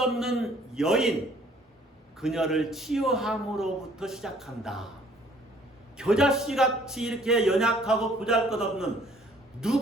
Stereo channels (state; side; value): normal; both; correlation 0.59